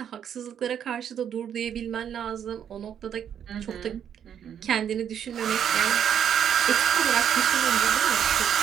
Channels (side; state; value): left; quieter; 8.9 dB